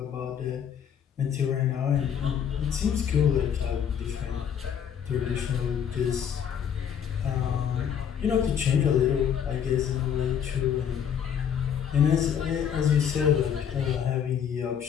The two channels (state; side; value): quieter; right; 8.3 dB